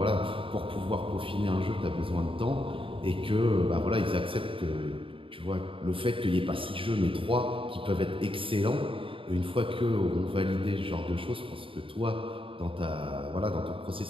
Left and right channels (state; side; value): late; left; 0.26 ms